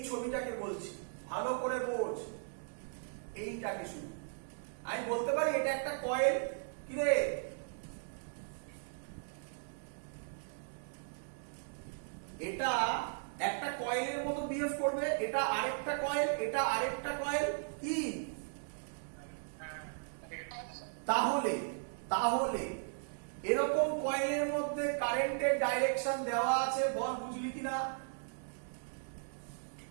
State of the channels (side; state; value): left; silent; digital silence